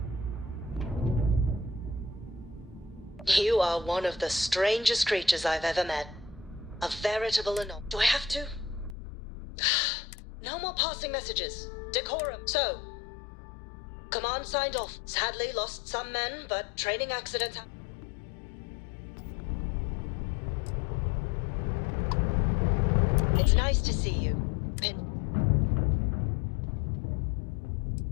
You are one of the strangest creatures I've ever met. A veritable anomaly. Do I have to? No more passing messages. Decorum. So, command signed off. Sadly lost some men, but training accidents happen. It's nice to see you.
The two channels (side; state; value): right; drops out; at 9.0 s